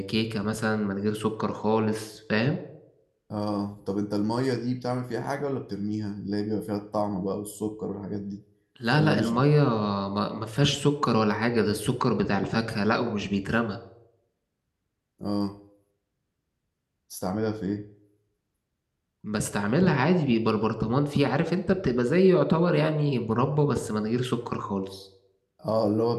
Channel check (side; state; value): both; identical; correlation 1.00